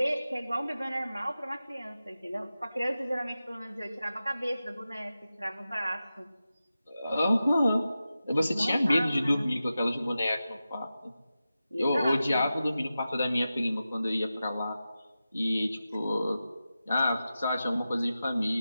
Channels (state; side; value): inverted; both; correlation -0.93